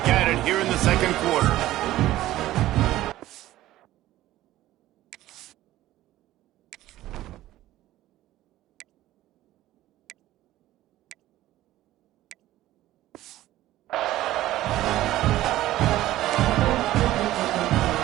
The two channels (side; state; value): left; quieter; 15.1 dB